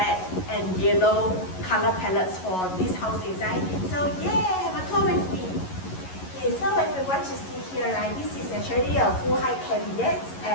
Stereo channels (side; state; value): right; late; 11 ms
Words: and yellow color palettes for this house design. So yeah, have a tour with me. Okay, so if you want to see here, right, this is actually a full height cabinet